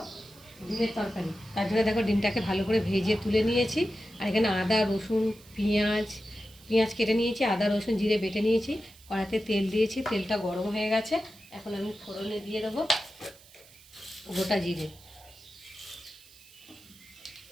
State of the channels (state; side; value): noise; right; hiss, 24 dB below the sound